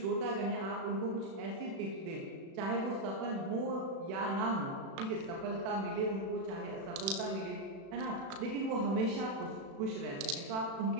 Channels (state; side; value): late; left; 36 ms